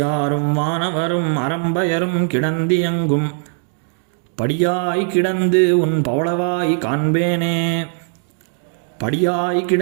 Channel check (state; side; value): silent; left; 57 dB below the other